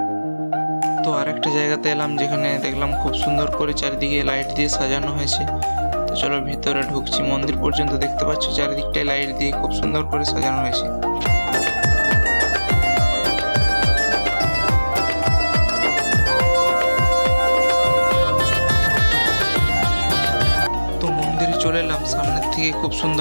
তো আরেকটা জায়গাতে এলাম যেখানে দেখলাম খুব সুন্দর করে চারিদিকে লাইট দিয়ে সাজানো হয়েছে। তো চলো ভিতরে ঢুকছি। মন্দির পর্যন্ত দেখতে পাচ্ছ চারিদিকটায় লাইট দিয়ে খুব সুন্দর করে সাজানো হয়েছে। তো মন্দিরে চলে এলাম, সামনের থেকে খুব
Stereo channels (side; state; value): both; inverted; correlation -1.00